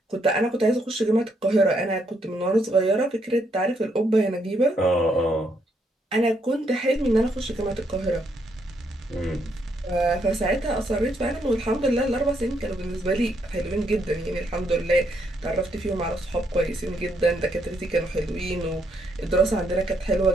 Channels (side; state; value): both; normal; correlation 0.75